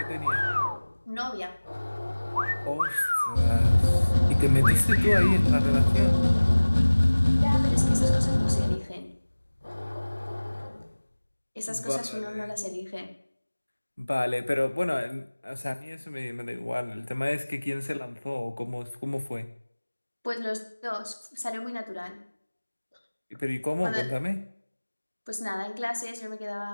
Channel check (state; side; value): inverted; both; correlation -1.00